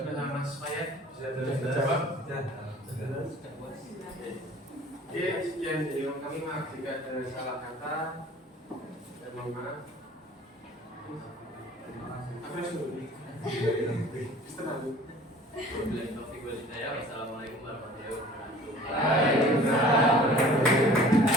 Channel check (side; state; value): both; normal; correlation 0.47